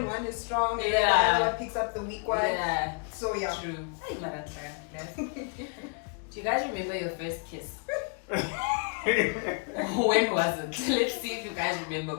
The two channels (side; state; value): right; quieter; 38.9 dB